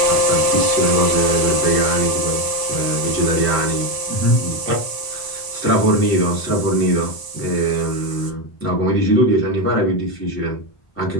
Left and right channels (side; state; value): right; late; 1.0 ms